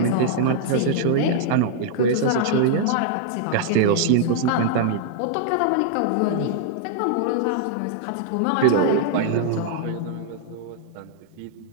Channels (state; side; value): different; both; correlation -0.01